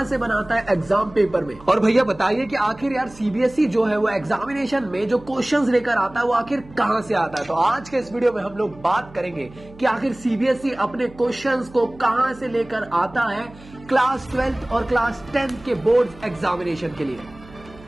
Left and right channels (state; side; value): noise; right; hum, 21 dB below the sound